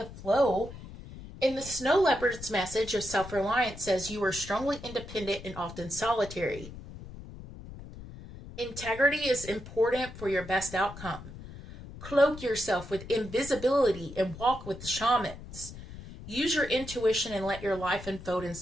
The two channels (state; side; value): noise; left; rumble, 14 dB below the sound